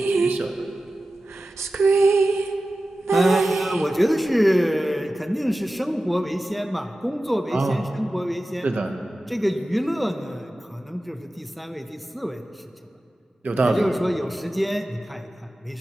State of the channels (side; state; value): both; normal; correlation 0.94